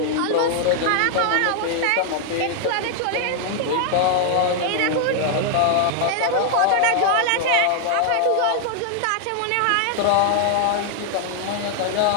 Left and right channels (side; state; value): both; different; correlation 0.00